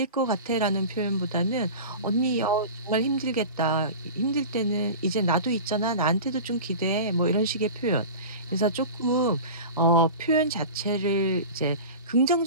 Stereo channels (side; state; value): both; inverted; correlation -0.33